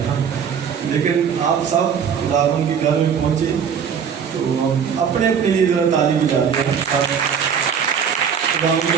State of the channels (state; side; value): quieter; left; 7.3 dB